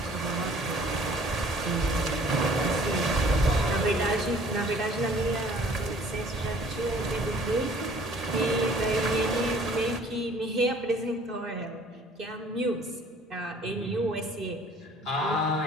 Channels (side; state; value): both; normal; correlation 0.55